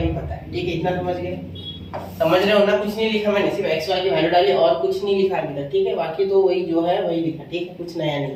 पता है, ठीक है। इतना समझ गए, समझ रहे हो ना। कुछ नहीं लिखा मैंने, सिर्फ x y की वैल्यू डाली और कुछ नहीं लिखा अभी तक, ठीक है। बाकी तो वही जो है वही लिखा, ठीक है, कुछ नया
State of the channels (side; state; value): both; identical; correlation 1.00